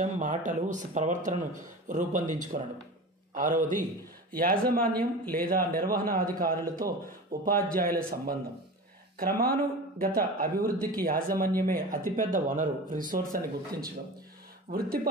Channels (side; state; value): both; normal; correlation 0.32